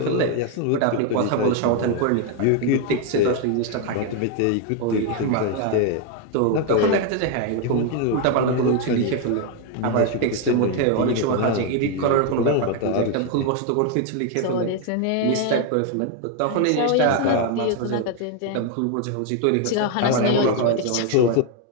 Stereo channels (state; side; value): different; both; correlation 0.01